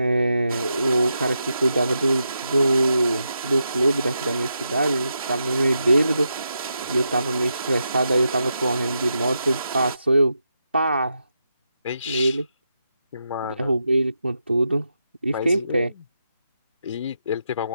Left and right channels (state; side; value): inverted; both; correlation -0.85